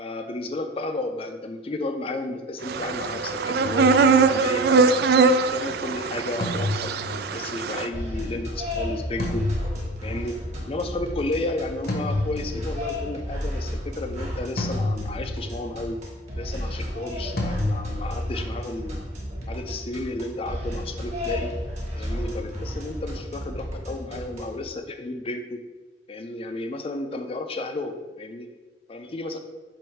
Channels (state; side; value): normal; both; correlation 0.35